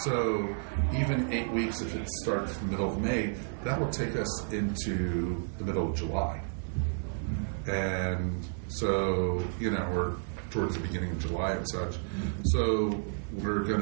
even 8 weeks, if it starts the middle of May, that will take us into the middle of July. And so, we're towards the beginning of July and such. So we're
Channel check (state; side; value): silent; left; digital silence